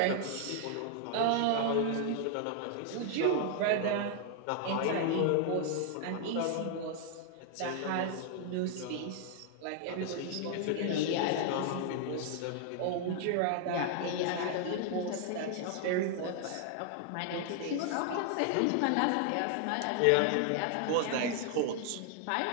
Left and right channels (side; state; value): both; different; correlation 0.00